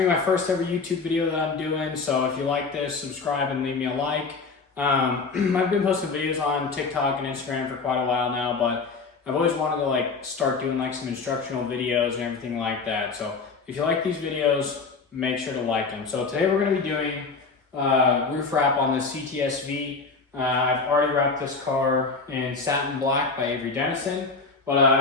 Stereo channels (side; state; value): right; quieter; 4.5 dB